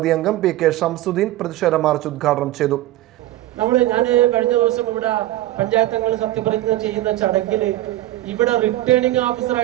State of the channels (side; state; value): left; quieter; 15.3 dB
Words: അംഗം PK ഷംസുദ്ദീൻ പ്രതിഷേധ മാർച്ച് ഉദ്ഘാടനം ചെയ്തു. ഞാൻ കഴിഞ്ഞ ദിവസം ഇവിടെ പഞ്ചായത്തങ്ങൾ സത്യപ്രതിജ്ഞ ചെയ്യുന്ന ചടങ്ങിൽ ഇവിടെ റിട്ടേണിംഗ്